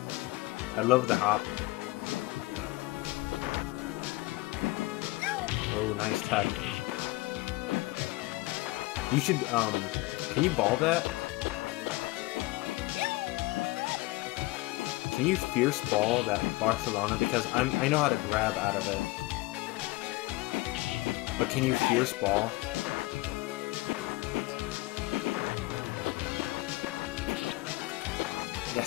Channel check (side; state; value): right; quieter; 21.6 dB